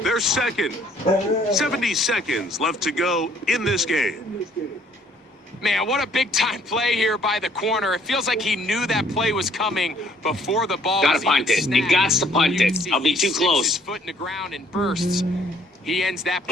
They're 2nd. 70 seconds left to go in this game. Man, what a big-time play here by the corner. It feels like he knew that play was coming before the ball Gotta was even punt it. snapped. You got to punt You can it. see I'll be he too sticks close. his foot in the ground and bursts. He ends that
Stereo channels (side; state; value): both; normal; correlation 0.61